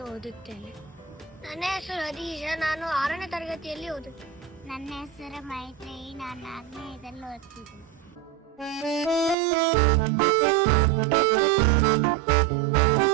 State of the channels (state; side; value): drops out; left; at 9.3 s